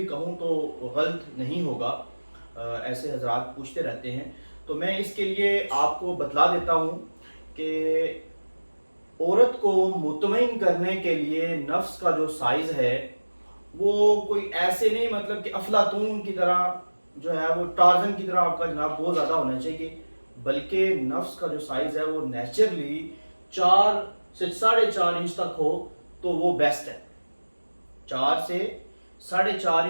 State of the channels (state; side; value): inverted; both; correlation -1.00